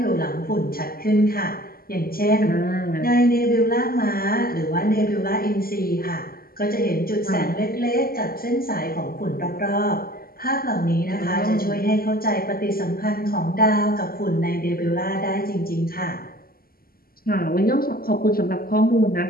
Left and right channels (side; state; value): right; late; 0.43 ms